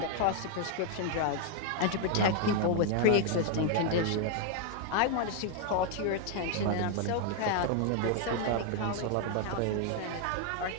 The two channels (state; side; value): different; both; correlation 0.00